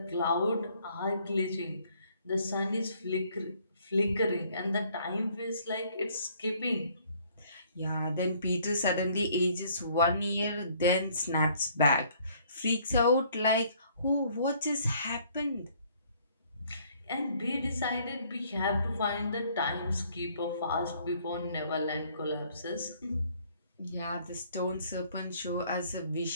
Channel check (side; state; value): both; inverted; correlation -0.61